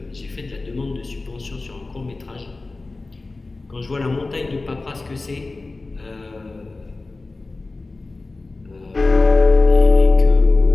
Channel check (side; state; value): right; quieter; 3.4 dB